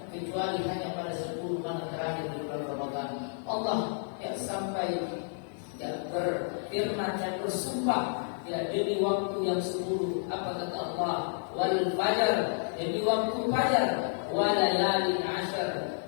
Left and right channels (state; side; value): silent; right; digital silence